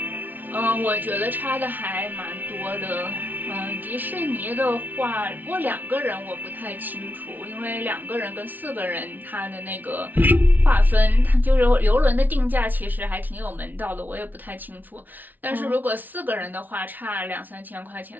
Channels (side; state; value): left; late; 0.083 ms